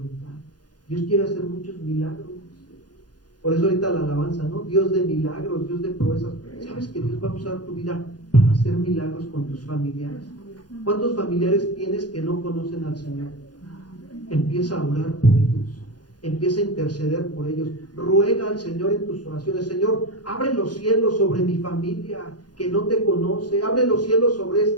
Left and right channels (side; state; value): right; late; 0.69 ms